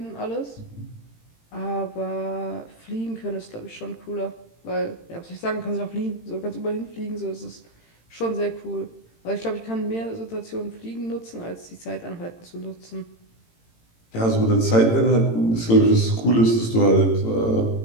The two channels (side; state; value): right; late; 18 ms